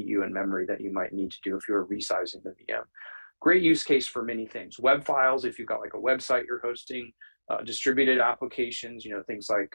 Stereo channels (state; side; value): inverted; both; correlation -1.00